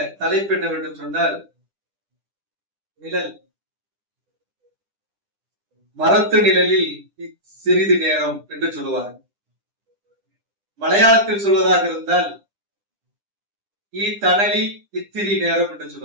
தலைப்பு என்னவென்று சொன்னால், நிழல். மரத்து நிழலில் சிறிது நேரம் என்று சொல்லுவார்கள். மலையாளத்தில் சொல்வதாக இருந்தால் ஈ தணலி இத்திரி நேரம் என்று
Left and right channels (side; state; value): left; late; 10 ms